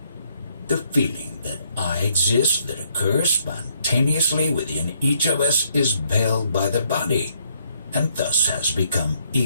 The feeling that I exist that occurs spontaneously within each of us is veiled by the body, and thus has become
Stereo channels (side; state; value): both; inverted; correlation -0.70